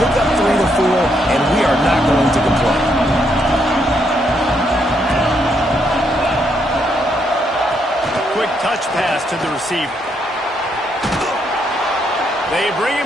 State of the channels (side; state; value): both; normal; correlation 0.76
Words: pick up 3 to 4, and we are not going to complain. Quick touch pass to the receiver. They bring